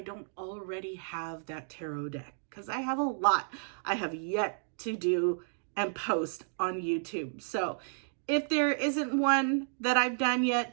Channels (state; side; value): silent; left; digital silence